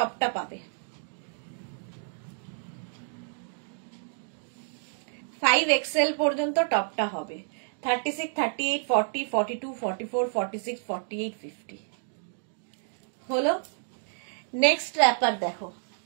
পাবে। 5XL পর্যন্ত টপটা হবে। 36, 38, 40, 42, 44, 46, 48, 50 হলো। নেক্সট র্যাপার দেখো,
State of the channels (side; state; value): left; silent; digital silence